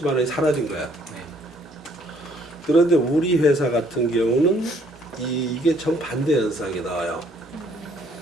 원이 사라진 거야. 네. 그런데 우리 회사 같은 경우는 이게 정반대 현상이 나와요.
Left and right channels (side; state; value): both; normal; correlation 0.64